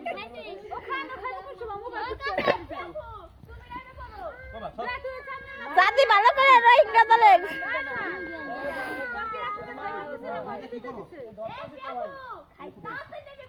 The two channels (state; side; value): identical; both; correlation 1.00